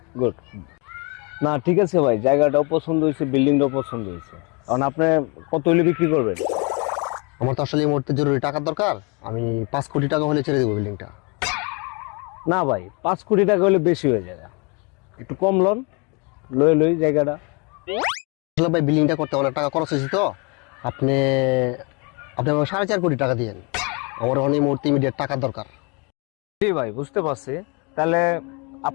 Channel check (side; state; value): right; quieter; 31.4 dB